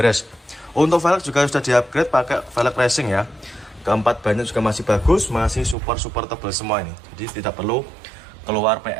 Untuk velg juga sudah di-upgrade pakai velg racing ya. Keempat bannya juga masih bagus, masih super tebal semua ini. Jadi tidak perlu keluar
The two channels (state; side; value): drops out; left; at 5.8 s